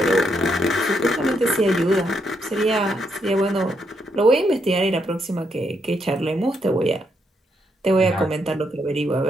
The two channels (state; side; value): normal; both; correlation 0.77